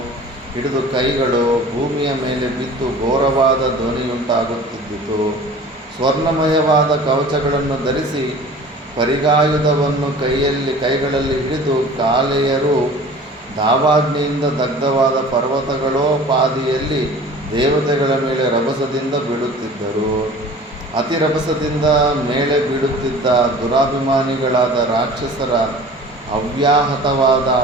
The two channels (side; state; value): both; normal; correlation 0.43